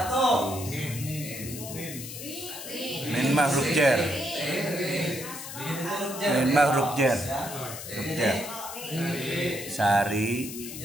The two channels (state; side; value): noise; left; hiss, 10 dB below the sound